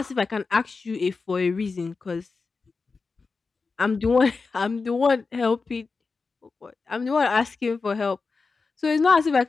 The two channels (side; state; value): right; quieter; 4.4 dB